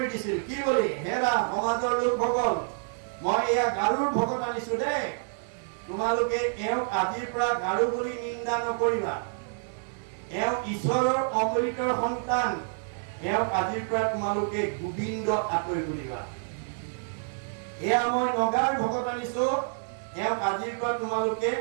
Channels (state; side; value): silent; left; digital silence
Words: দিছিল কি বুলি হেৰা সমাজৰ লোকসকল মই এয়া গাৰুৰ ভকত আনিছো দেই তোমালোকে এওঁক আজিৰ পৰা গাৰু বুলি নিন্দা নকৰিবা এওঁ ঈশ্বৰৰ অমৃতৰ সন্তান এওঁক আজিৰ পৰা তোমালোকে গোবিন্দ আঁতৰি বুলিবা এয়া মই নগাৰ ভকত আনিছো এওঁক আজিৰ পৰা তোমালোকে